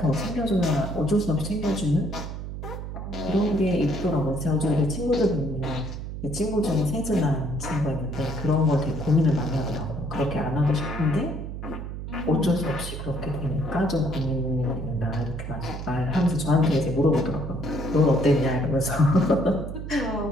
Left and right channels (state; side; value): noise; right; hum, 7 dB below the sound